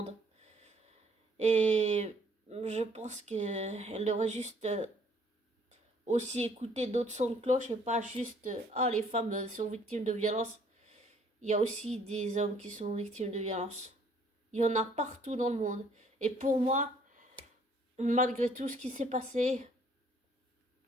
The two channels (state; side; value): normal; both; correlation 0.61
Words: Et je pense qu'elle devrait juste aussi écouter d'autres sons de cloche et pas juste ah, les femmes sont victimes de violences. Il y a aussi des hommes qui sont victimes de violences. Il y en a partout dans le monde. Et pour moi, malgré tout ce qui s'est passé,